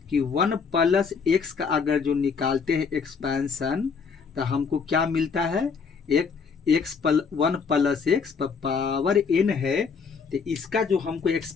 कि 1 प्लस x का अगर जो निकालते हैं एक्सपेंशन तो हमको क्या मिलता है, एक x 1 प्लस x पर पावर n है, तो इसका जो हमको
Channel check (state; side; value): quieter; right; 5.6 dB